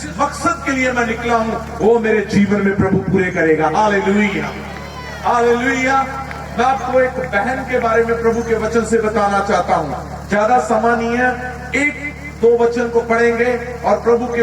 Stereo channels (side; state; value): both; identical; correlation 1.00